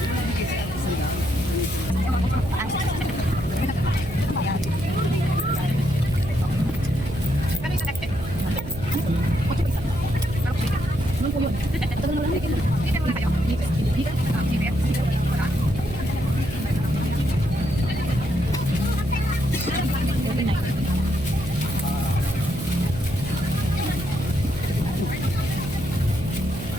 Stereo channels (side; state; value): right; noise; hum, 10 dB below the sound